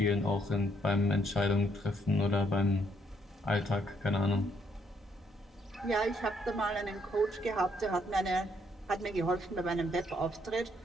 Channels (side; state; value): both; normal; correlation 0.71